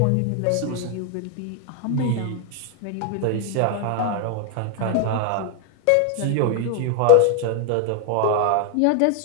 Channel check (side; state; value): both; different; correlation 0.00